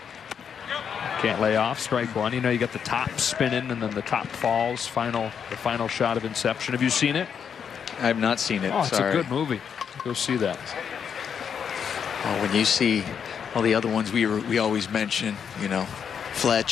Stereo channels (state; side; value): quieter; right; 7.4 dB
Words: Can't lay off. Strike one. You know, you got the top spinning and then the top falls. The final shot of Inception. Have you seen it? I have not seen it. Oh, it's Sorry. a good movie. Go see that. Oh, when you see all the other ones we always mention, you know,